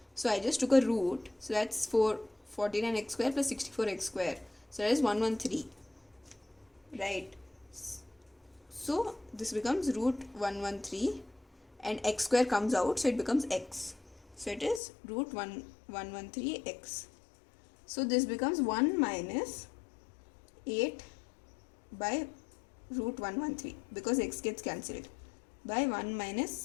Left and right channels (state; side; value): drops out; right; at 14.8 s